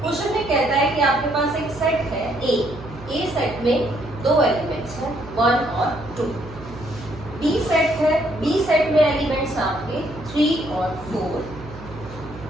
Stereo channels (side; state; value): right; noise; hum, 15 dB below the sound